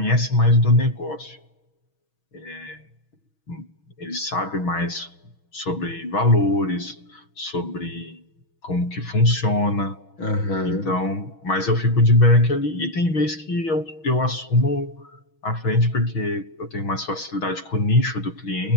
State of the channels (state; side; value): late; right; 6.3 ms